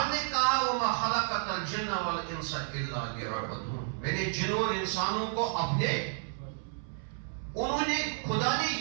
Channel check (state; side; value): silent; left; 57 dB below the other